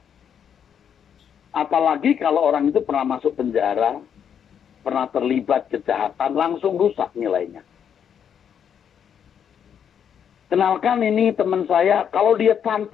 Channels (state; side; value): quieter; right; 8.2 dB